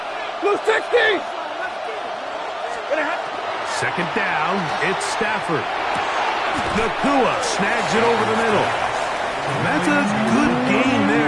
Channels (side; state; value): both; identical; correlation 1.00